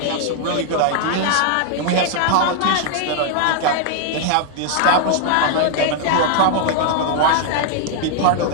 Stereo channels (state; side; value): different; both; correlation 0.00